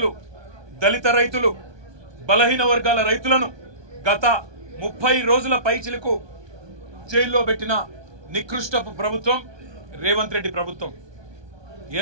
దళిత రైతులు, బలహీన వర్గాల రైతులను గత 30 రోజుల పైచిలకు జైల్లో పెట్టిన నికృష్టపు ప్రభుత్వం రేవంత్ రెడ్డి ప్రభుత్వం.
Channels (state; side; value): late; left; 1.2 ms